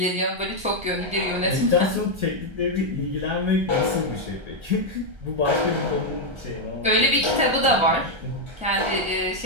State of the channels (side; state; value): left; late; 1.3 ms